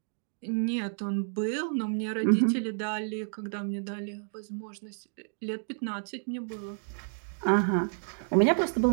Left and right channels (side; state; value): left; silent; digital silence